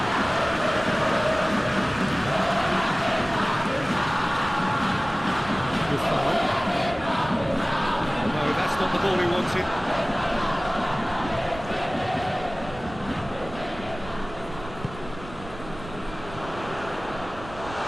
Good foul. No, that's not the ball he wanted.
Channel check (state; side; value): noise; right; rumble, 15 dB below the sound